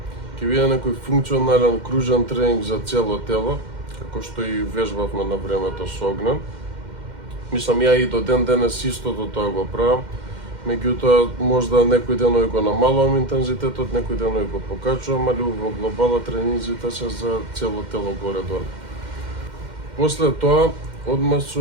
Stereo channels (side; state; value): left; late; 2.1 ms